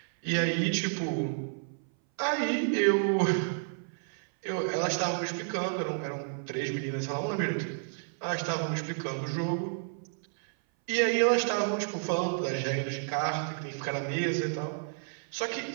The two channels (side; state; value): left; silent; 57 dB below the other